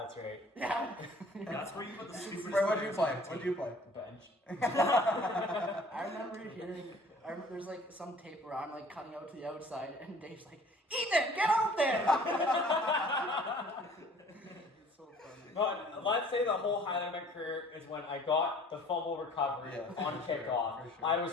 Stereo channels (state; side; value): normal; both; correlation 0.51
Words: that's right. Yeah. That's where you put the stupid. Wait, what'd you play? What'd you play? Bench. I remember hearing. I remember there's like some tape where I'm like cutting out to the outside, and Dave's like, "Ethan, get out there!" It's so funny. But let's say the whole highlight of my career is when I got the fumble recovery Yeah, on for sure, kickoff. for sure. I was